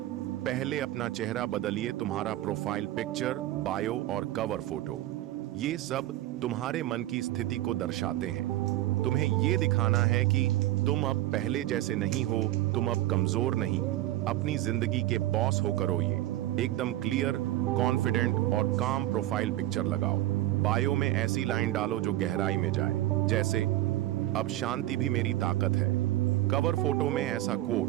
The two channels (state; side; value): quieter; left; 15.2 dB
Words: पहले अपना चेहरा बदलिए। तुम्हारा प्रोफाइल पिक्चर, बायो और कवर फोटो, ये सब तुम्हारे मन की स्थिति को दर्शाते हैं। तुम्हें ये दिखाना है कि तुम अब पहले जैसे नहीं हो, तुम अब कमजोर नहीं, अपनी जिंदगी के बॉस हो करो। ये एकदम क्लियर, कॉन्फिडेंट और काम प्रोफाइल पिक्चर लगाओ। बायो में ऐसी लाइन डालो जो गहराई में जाए, जैसे अब शांति भी मेरी ताकत है। कवर फोटो में ऐसा